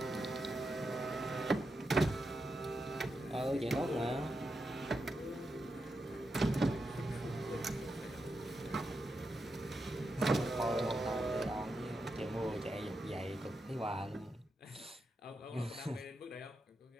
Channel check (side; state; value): both; normal; correlation 0.86